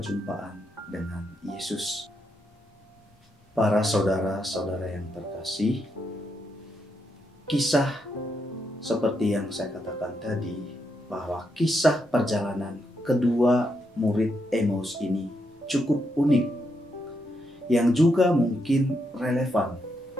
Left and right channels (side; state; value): both; normal; correlation 0.81